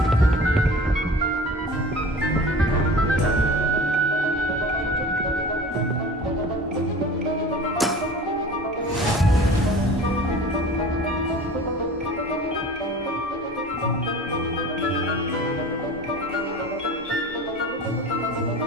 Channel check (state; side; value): normal; both; correlation 0.41